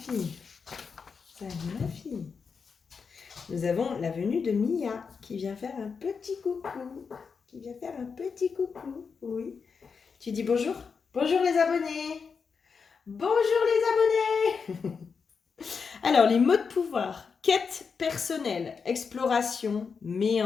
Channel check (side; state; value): right; quieter; 5.6 dB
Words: Salut ma fille. Nous avons la venue de Mia qui vient faire un petit coucou. Qui vient faire un petit coucou. Oui. Tu dis bonjour? Bonjour les abonnés. Bonjour les abonnés. Alors, les mots de pouvoir. Quête personnelle, exploration,